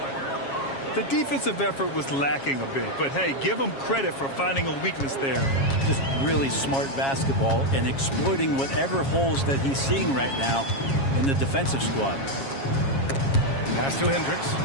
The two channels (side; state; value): right; late; 7.3 ms